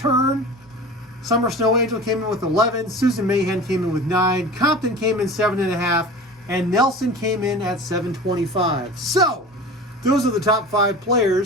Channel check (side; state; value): both; normal; correlation 0.36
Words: Summer Snow Angel came in with 11. Susan Mayhem came in with 9. Compton came in 7.5. And Nelson came in at 7.25. So, those are the top 5